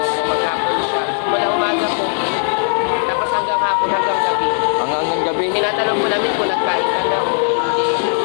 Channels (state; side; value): silent; right; digital silence